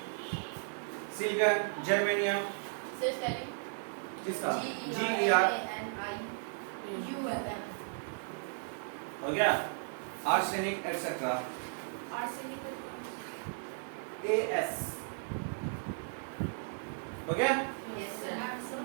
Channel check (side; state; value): left; silent; digital silence